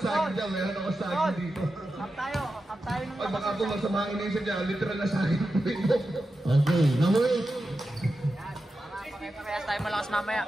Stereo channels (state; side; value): normal; both; correlation 0.91